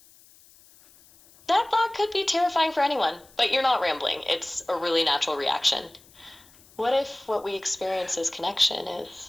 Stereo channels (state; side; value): noise; left; hiss, 26 dB below the sound